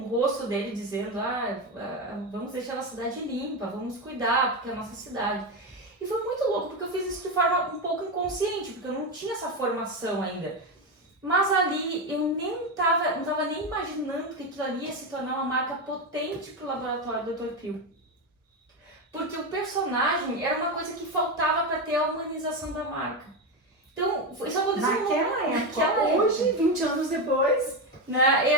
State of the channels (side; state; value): both; normal; correlation 0.13